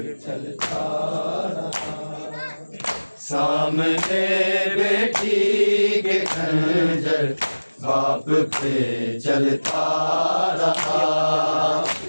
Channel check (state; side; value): inverted; both; correlation -1.00